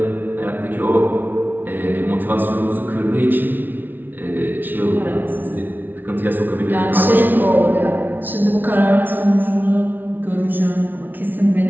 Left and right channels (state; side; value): late; left; 0.089 ms